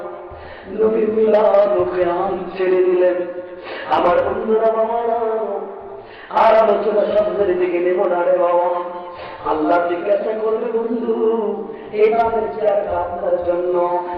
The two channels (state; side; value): identical; both; correlation 1.00